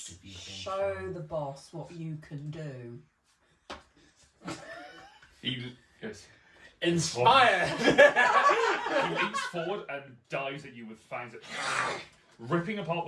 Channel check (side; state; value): both; identical; correlation 1.00